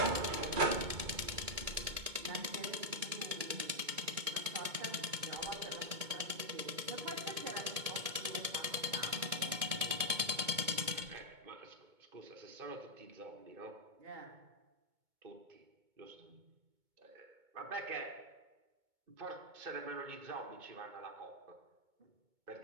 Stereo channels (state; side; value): late; left; 2.2 ms